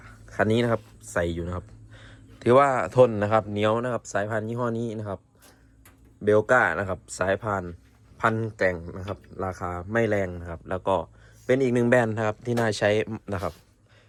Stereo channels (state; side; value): identical; both; correlation 1.00